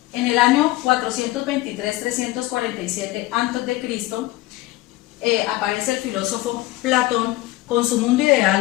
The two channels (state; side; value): quieter; right; 18.1 dB